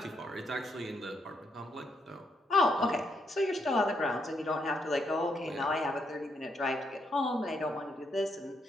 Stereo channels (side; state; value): both; normal; correlation 0.77